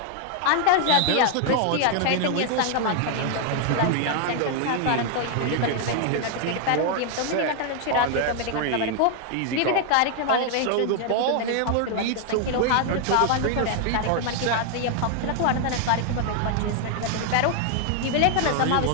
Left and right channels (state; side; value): different; both; correlation 0.00